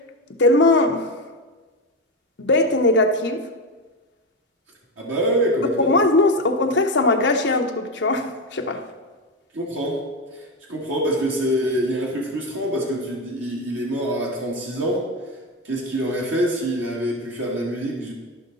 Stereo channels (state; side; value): normal; both; correlation 0.15